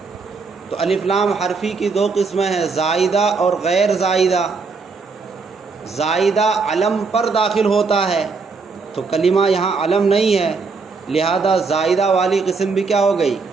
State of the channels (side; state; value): left; quieter; 4.6 dB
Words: تو الف لام حرفی کی دو قسمیں ہیں، زائدہ اور غیر زائدہ۔ زائدہ علم پر داخل ہوتا ہے تو کلمہ یہاں علم نہیں ہے، لہذا زائدہ والی قسم بھی کیا ہو گئی؟